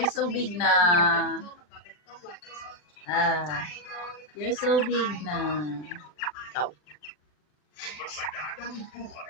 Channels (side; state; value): right; late; 40 ms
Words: so big na. You're so big na. Ikaw.